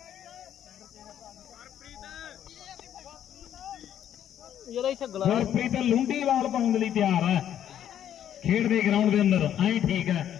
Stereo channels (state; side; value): quieter; right; 10.3 dB